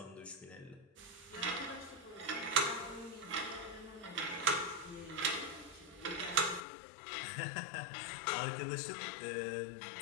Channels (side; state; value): right; drops out; at 6.6 s